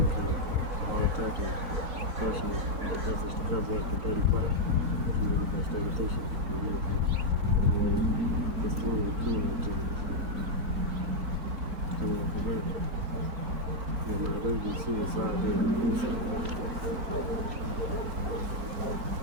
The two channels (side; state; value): left; late; 4.1 ms